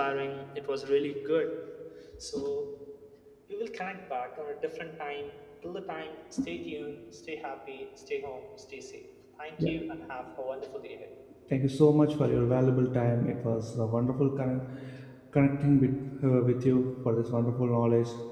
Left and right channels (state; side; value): identical; both; correlation 1.00